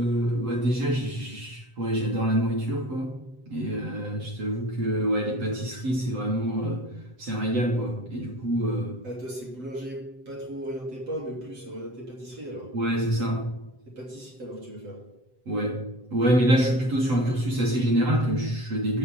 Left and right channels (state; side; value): late; left; 7.8 ms